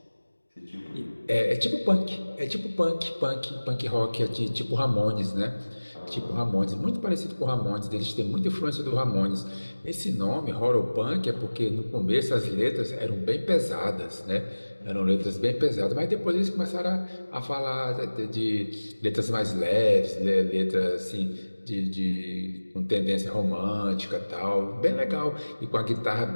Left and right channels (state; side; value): inverted; both; correlation -1.00